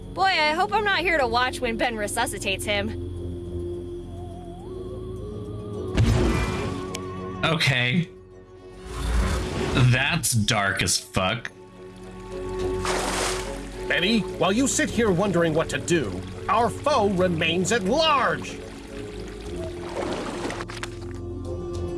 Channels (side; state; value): both; identical; correlation 1.00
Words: Boy, I hope I'm not here to watch when Ben resuscitates him. Okay. That's dark as fuck. Betty, while you sit here wondering what to do, our foe remains at large.